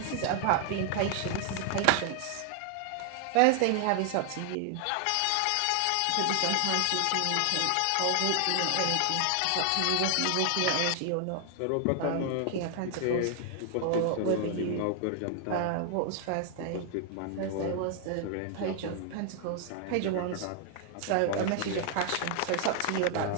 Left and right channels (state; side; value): different; both; correlation 0.00